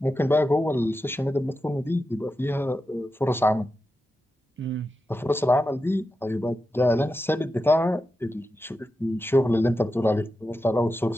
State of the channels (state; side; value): normal; both; correlation 0.90